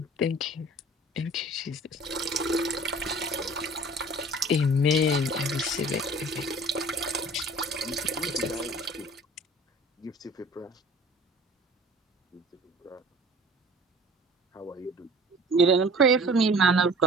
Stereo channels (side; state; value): both; normal; correlation 0.46